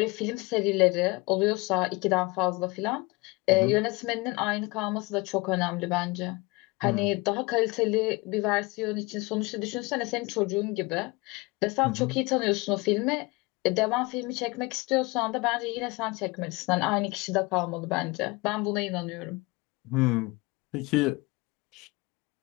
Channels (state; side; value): quieter; right; 24.7 dB